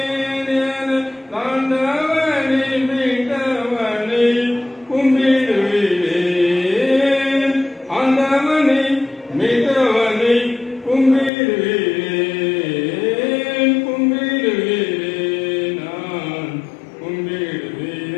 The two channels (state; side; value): drops out; right; at 11.3 s